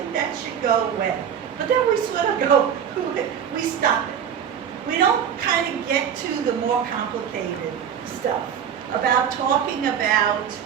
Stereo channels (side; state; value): left; quieter; 8.4 dB